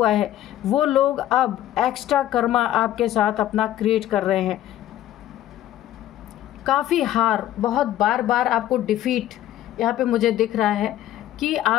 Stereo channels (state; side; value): quieter; right; 12.9 dB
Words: है, वो लोग अब एक्स्ट्रा कर्मा आपके साथ अपना क्रिएट कर रहे हैं। काफ़ी हार, बहुत बार बार आपको डिफीट यहाँ पे मुझे दिख रहा है कि